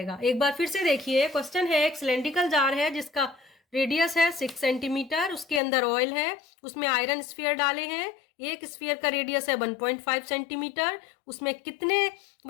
एक बार फिर से देखिए, क्वेश्चन है, एक सिलेंड्रिकल जार है जिसका रेडियस है 6 सेंटीमीटर, उसके अंदर ऑयल है, उसमें आयरन स्फीयर डाले हैं, एक स्फीयर का रेडियस है 1.5 सेंटीमीटर, उसमें कितने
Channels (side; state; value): right; drops out; at 5.6 s